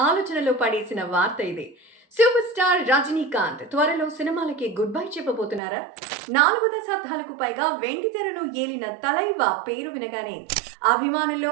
ఆలోచనలో పడేసిన వార్త ఇది. సూపర్ స్టార్ రజనీకాంత్ త్వరలో సినిమాలకి గుడ్ బై చెప్పబోతున్నారా? 4 దశాబ్దాలకు పైగా వెండితెరను ఏలిన తలైవా పేరు వినగానే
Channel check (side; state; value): left; drops out; at 5.6 s